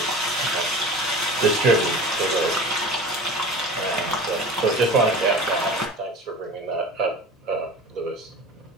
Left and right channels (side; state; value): both; normal; correlation 0.36